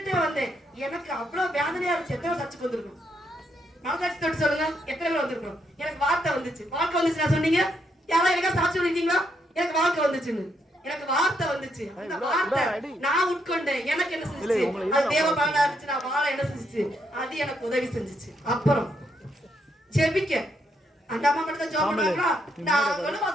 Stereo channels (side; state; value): both; normal; correlation 0.77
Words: வந்தேன், எனக்கு அவ்வளவு வேதனையா இருந்துச்சு. எத்தனை சர்ச்சுக்கு வந்திருக்கும்? மனசாட்சி தொட்டு சொல்லுங்க, எத்தனை பேர் வந்திருக்கோம்? எனக்கு வார்த்தை வந்துச்சு. வாழ்க்கை வந்துச்சு நான் சொன்னீங்க? யாராவது எனக்கா சாட்சி சொல்லிட்டீங்களா? எனக்கு வாழ்க்கை வந்துச்சுன்னு. எனக்கு வார்த்தை வந்துச்சு. அந்த வார்த்தை நான் உட்கொண்டேன். எனக்கு என்ன செஞ்சுச்சு? அது தேவ பலனா இருந்துச்சு. நான் வாழ என்ன செஞ்சுச்சு? அது எனக்கு உதவி செஞ்சுச்சு. அப்புறம் ஜெபிக்க அந்த அம்மா மட்டும் தான் ஜெபம் பண்ணுவாங்களா? நாங்களும்